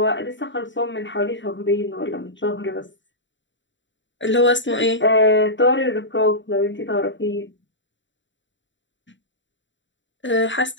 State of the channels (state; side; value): late; right; 0.54 ms